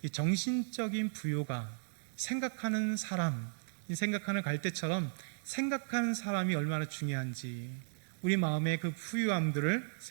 이 정신적인 부요가 생각하는 사람, 이 생각하는 갈대처럼 생각하는 사람이 얼마나 중요한지 우리 마음의 그 부유함들을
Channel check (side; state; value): left; silent; digital silence